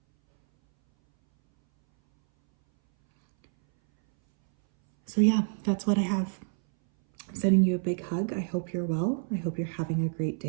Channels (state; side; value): silent; left; 59 dB below the other